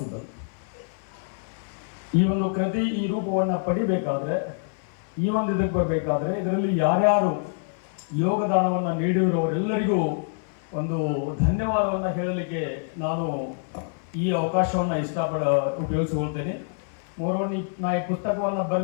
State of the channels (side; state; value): right; silent; 58 dB below the other